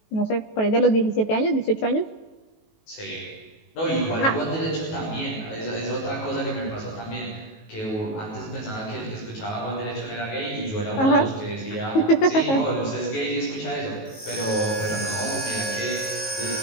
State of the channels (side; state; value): right; late; 19 ms